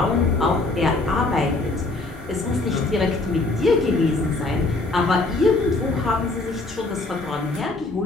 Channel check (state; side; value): quieter; right; 3.2 dB